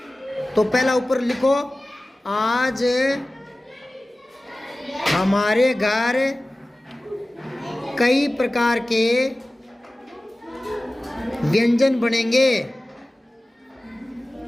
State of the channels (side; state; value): both; normal; correlation 0.97